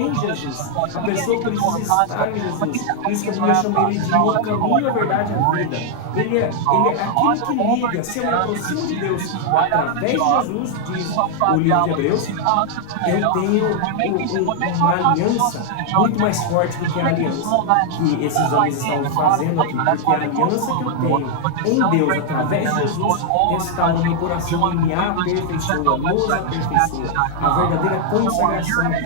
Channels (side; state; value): both; different; correlation 0.00